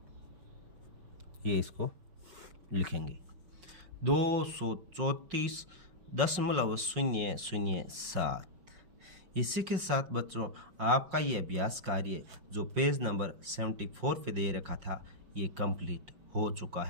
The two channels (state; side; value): late; left; 5.5 ms